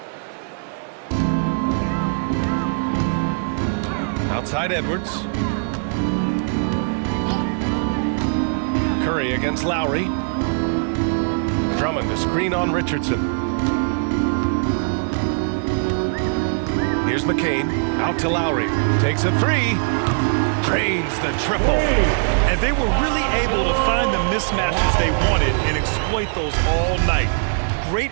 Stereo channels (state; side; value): silent; left; digital silence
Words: Outside Edwards. Curry against Lowry. Drummond to screen on Richardson. Here's McCain. Out to Lowry. Takes a three. Drains the triple. And they were really able to find the mismatches they wanted and exploit those all night.